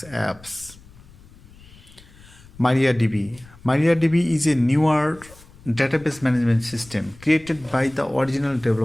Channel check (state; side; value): noise; left; rumble, 23 dB below the sound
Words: apps. MariaDB. MariaDB is a newer database management system created by the original